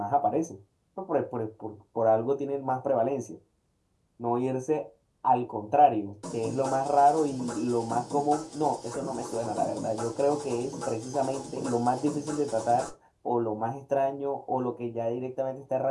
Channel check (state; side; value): identical; both; correlation 1.00